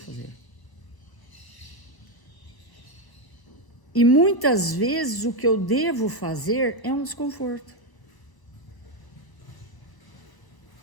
E muitas vezes o que eu devo fazer é um desconforto.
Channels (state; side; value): late; right; 1.0 ms